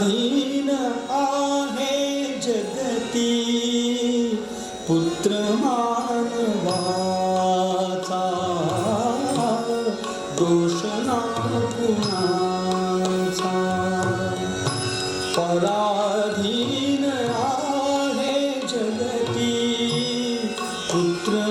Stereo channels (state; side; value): identical; both; correlation 1.00